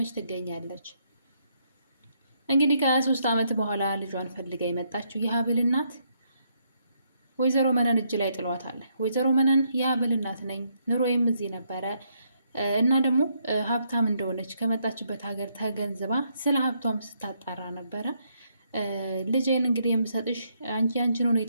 ትገኛለች። እንግዲህ ከ23 ዓመት በኋላ ልጇን ፈልጋ የመጣችው የሀብል እናት ወይዘሮ መነን እጅ ላይ ጥሏታል። ወይዘሮ መነን የሀብል እናት ነኝ፣ ኑሮዬም እዚህ ነበረ እና ደግሞ ሀብታም እንደሆነች ከመጣችበት ሀገር ተገንዝባ ስለ ሀብቷም ስታጣራ ነበረ። ልጄን እንግዲህ የምሰጥሽ አንቺን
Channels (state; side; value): inverted; both; correlation -0.75